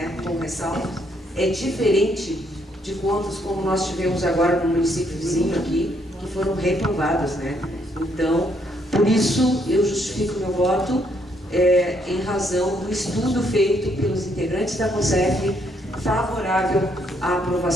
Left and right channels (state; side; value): normal; both; correlation 0.71